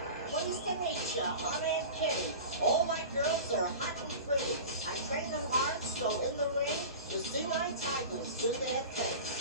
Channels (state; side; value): inverted; both; correlation -0.34